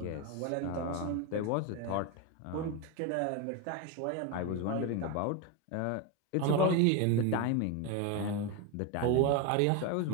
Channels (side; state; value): both; different; correlation 0.02